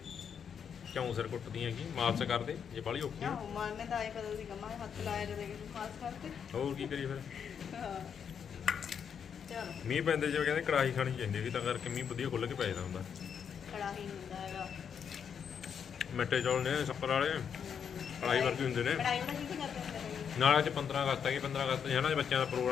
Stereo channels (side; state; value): right; quieter; 7.4 dB